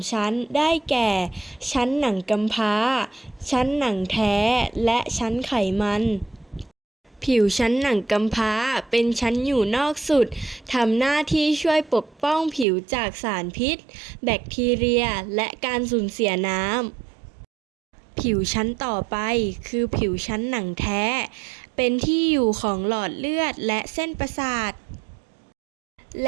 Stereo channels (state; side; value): drops out; left; at 12.7 s